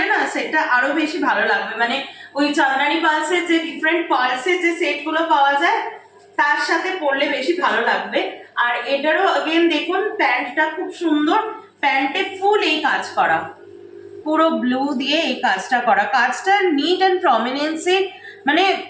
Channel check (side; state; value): both; identical; correlation 1.00